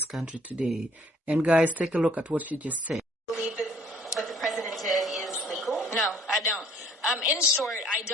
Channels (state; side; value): normal; both; correlation 0.58